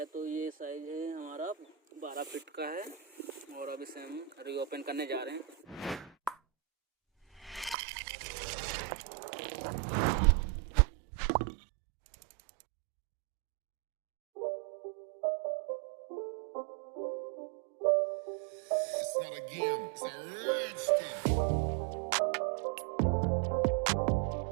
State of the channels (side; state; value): left; drops out; at 7.8 s